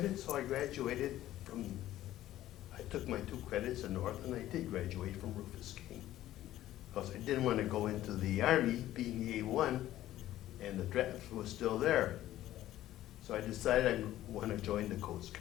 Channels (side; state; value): right; quieter; 13.9 dB